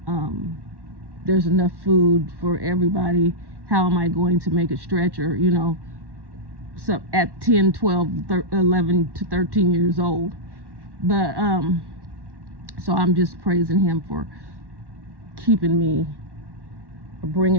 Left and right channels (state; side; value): late; left; 1.1 ms